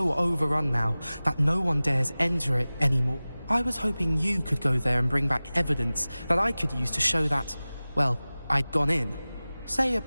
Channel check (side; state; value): both; inverted; correlation -0.98